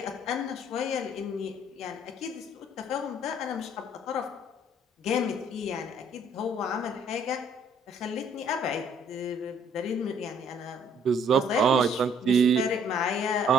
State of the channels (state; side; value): normal; both; correlation 0.61